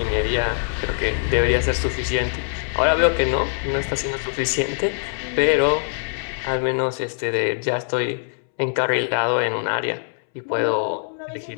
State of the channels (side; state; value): right; silent; 64 dB below the other